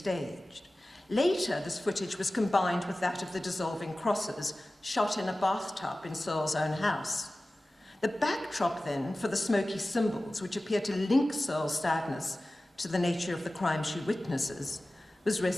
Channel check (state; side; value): normal; both; correlation 0.96